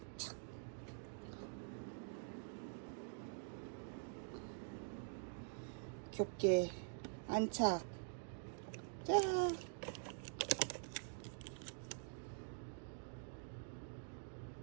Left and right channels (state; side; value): silent; left; digital silence